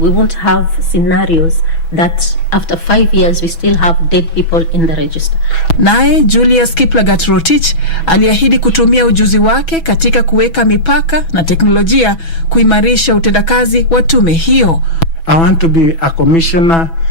We won't have scenarios that after 5 years we still have dead people in the register. Naye Julius Kiplagat Rotich aliahidi kutumia ujuzi wake katika kuweka mipaka na teknolojia kuimarisha utendakazi wa tume hiyo. I want to be a commissioner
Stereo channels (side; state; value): right; late; 6.1 ms